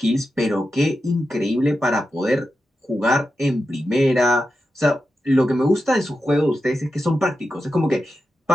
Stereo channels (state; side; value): normal; both; correlation 0.89